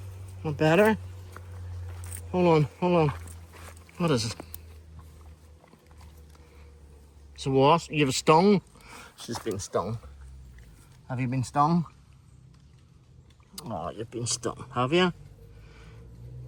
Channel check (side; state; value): both; identical; correlation 1.00